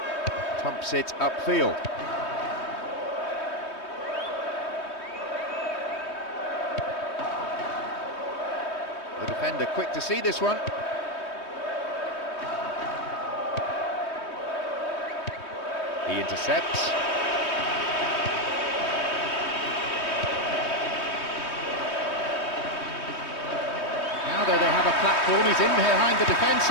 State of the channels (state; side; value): late; right; 3.2 ms